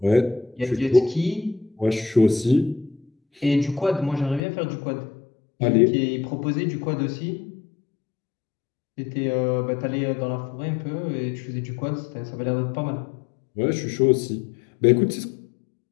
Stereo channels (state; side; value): drops out; right; at 4.4 s